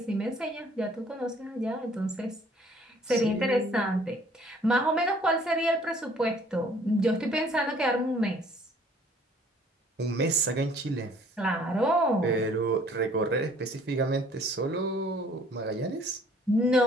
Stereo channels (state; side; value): normal; both; correlation 0.57